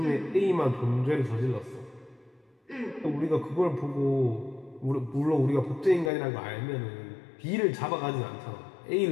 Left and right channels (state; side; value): drops out; right; at 6.1 s